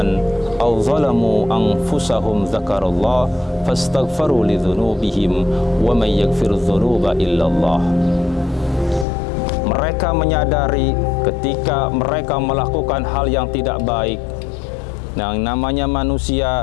aw zalamu anfusahum dzakarallah fastaghfaru lidzunubihim wa may yaghfiru dzunuba illallah. Mereka menyadari ketika mereka melakukan hal yang tidak baik. Nah, namanya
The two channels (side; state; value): right; drops out; at 9.1 s